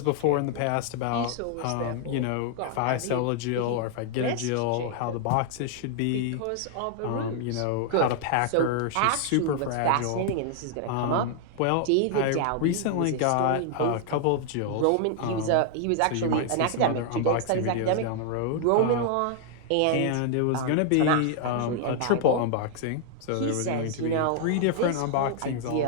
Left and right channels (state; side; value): different; both; correlation 0.00